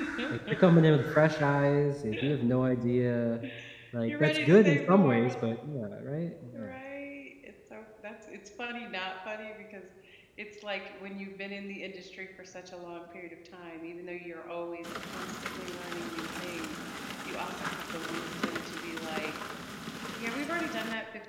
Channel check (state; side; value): identical; both; correlation 1.00